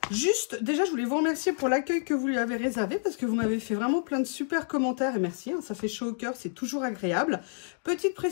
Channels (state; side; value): silent; right; digital silence